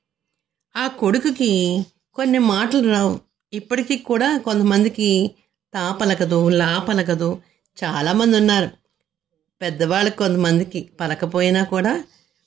ఆ కొడుకుకి కొన్ని మాటలు రావు. ఇప్పటికీ కూడా కొంతమందికి తాపలకదు, లాపలకదు. చాలామంది ఉన్నారు. పెద్దవాళ్ళకి కొంతమందికి పలకపోయినా కూడా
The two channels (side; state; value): left; quieter; 10.5 dB